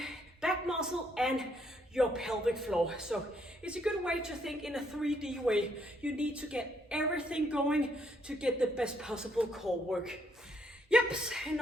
back muscle, and your pelvic floor. So it's a good way to think in a 3D way. You need to get everything going to get the best possible core work. Yep,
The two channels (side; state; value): both; normal; correlation 0.72